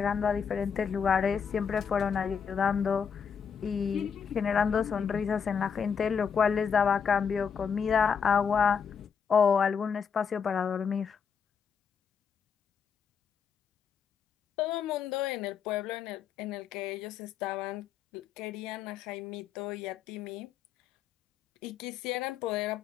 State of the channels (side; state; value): right; quieter; 6.7 dB